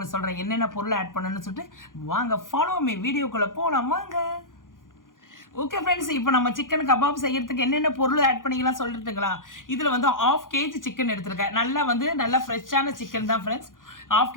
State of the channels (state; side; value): late; right; 0.89 ms